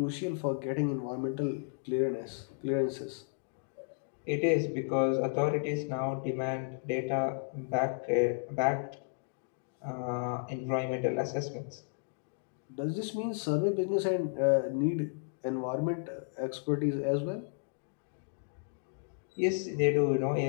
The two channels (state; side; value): silent; right; digital silence